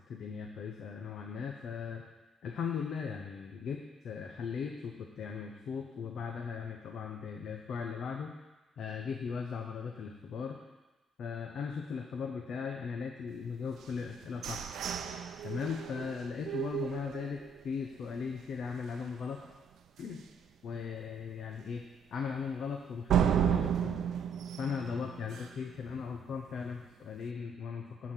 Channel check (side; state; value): both; normal; correlation 0.64